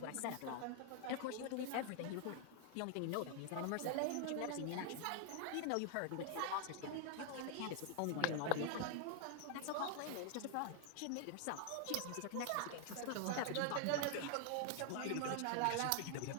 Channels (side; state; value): both; different; correlation 0.00